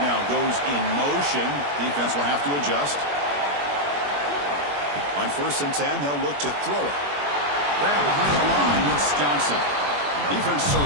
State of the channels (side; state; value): left; late; 21 ms